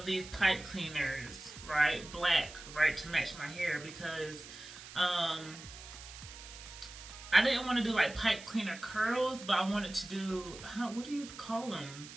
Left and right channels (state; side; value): noise; right; hiss, 15 dB below the sound